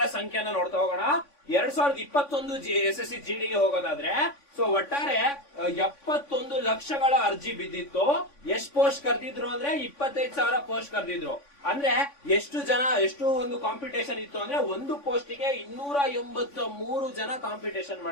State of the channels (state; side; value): late; right; 3.5 ms